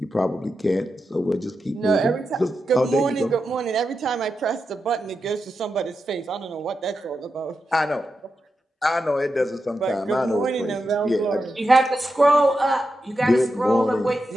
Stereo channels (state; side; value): normal; both; correlation 0.88